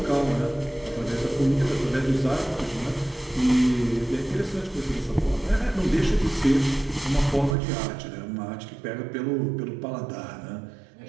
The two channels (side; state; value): left; drops out; at 7.6 s